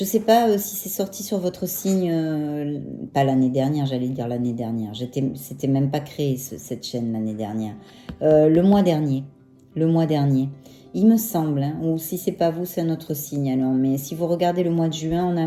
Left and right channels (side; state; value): both; identical; correlation 1.00